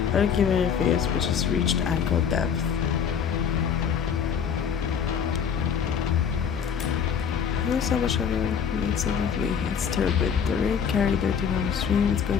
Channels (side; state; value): right; quieter; 7.2 dB